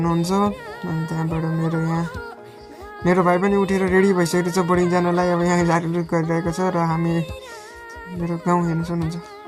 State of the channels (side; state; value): both; identical; correlation 1.00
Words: अनि त्यहाँबाट मेरो भाइ पनि उठेर रेडी भइसकेको छ बोर्डिङ जानलाई। अब यहाँ झारझुर गरिरहेको छ र हामी मेरो गाउँ हेर्न